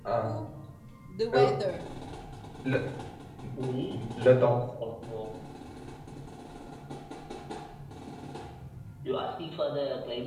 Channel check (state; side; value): identical; both; correlation 1.00